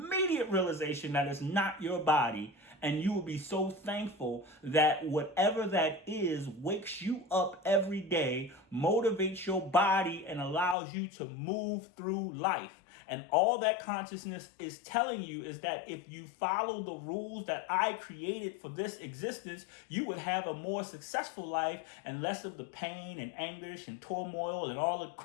realization that it's not your body, And you will be so thankful that whatever that is wakes you up every day, motivates your body, and allows you to move through life. And all that consciousness is telling you is that if you follow the rules that I created for this existence, you would have a more successful life and less of the pain and anguish and turmoil and all the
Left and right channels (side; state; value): right; drops out; at 10.8 s